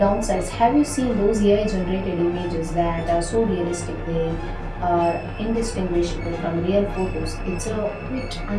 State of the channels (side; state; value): both; identical; correlation 1.00